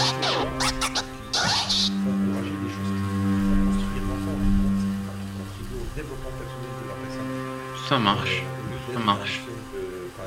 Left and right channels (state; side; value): identical; both; correlation 1.00